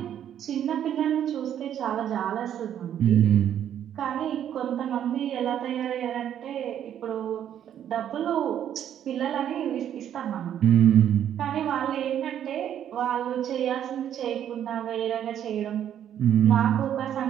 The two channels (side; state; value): left; quieter; 10.1 dB